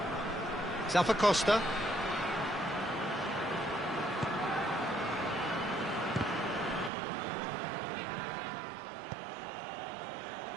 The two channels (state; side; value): drops out; left; at 6.9 s